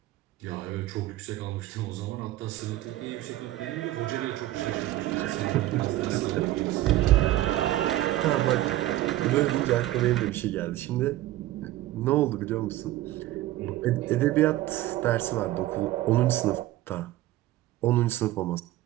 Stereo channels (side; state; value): left; quieter; 15.3 dB